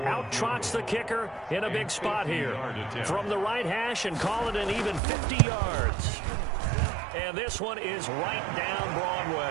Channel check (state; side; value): drops out; left; at 5.0 s